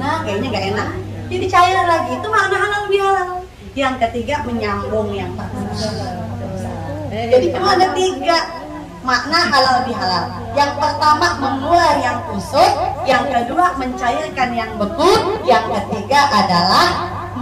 kayaknya nggak enak. Jadi cair lagi, itu makna halal lebih halal. Yang ketiga, menyambung yang putus. Jadi cuma ada 3 makna halal lebih halal. Yang pertama, mengurai yang kusut. Yang kedua, mencairkan yang beku. Yang ketiga adalah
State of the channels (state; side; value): identical; both; correlation 1.00